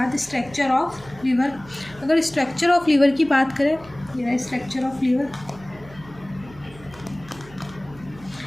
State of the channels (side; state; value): right; noise; hum, 21 dB below the sound